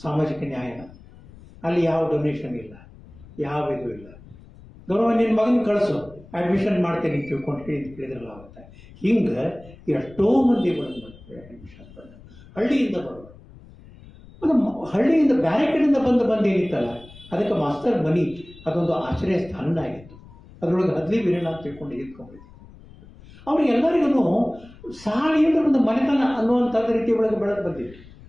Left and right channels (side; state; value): left; noise; rumble, 21 dB below the sound